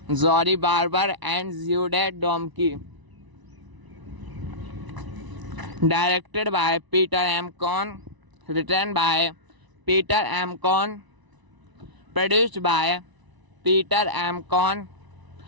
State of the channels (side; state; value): left; late; 1.0 ms